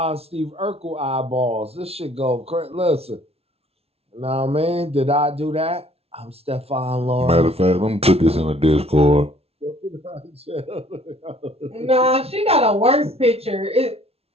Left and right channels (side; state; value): left; late; 0.30 ms